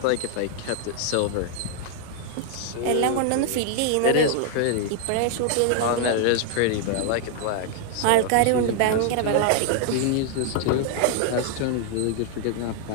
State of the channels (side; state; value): both; different; correlation 0.00